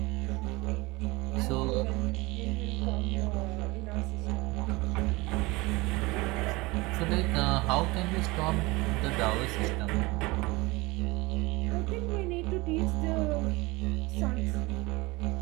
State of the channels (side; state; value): left; quieter; 23.0 dB